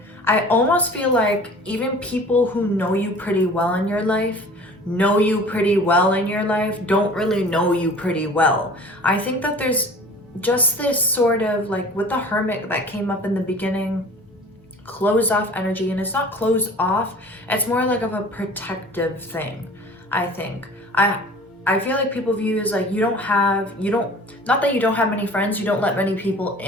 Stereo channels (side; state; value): both; normal; correlation 0.44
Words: I almost feel like even people who know you pretty well in your life, don't really know you pretty well. I think that there's just this sort of like with the Hermit that came up in the beginning, closed off energy, and it's not closed off, it's more like of a protective thing, I think. I feel like people view you as like not that you don't have many friends, you don't let many people